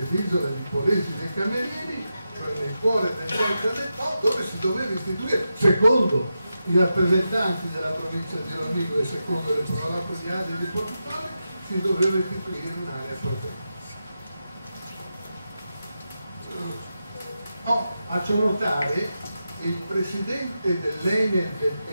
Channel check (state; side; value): inverted; both; correlation -0.89